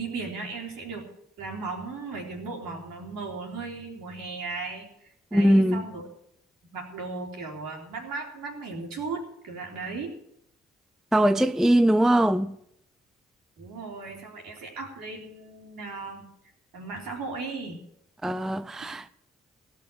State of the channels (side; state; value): both; normal; correlation 0.88